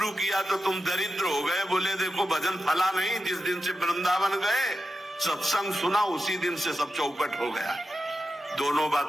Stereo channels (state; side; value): normal; both; correlation 0.90